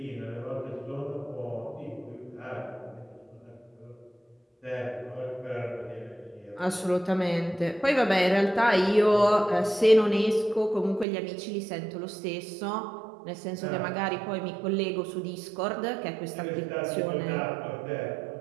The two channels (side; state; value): left; drops out; at 11.1 s